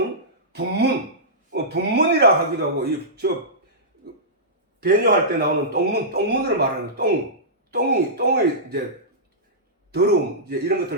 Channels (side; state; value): both; normal; correlation -0.16